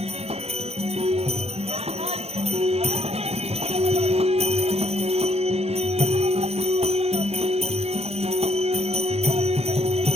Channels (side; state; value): left; late; 0.30 ms